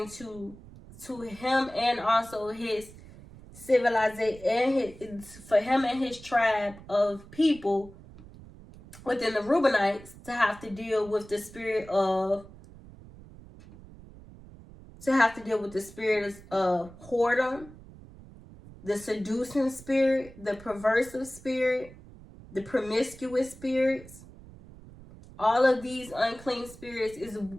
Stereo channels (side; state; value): right; noise; rumble, 19 dB below the sound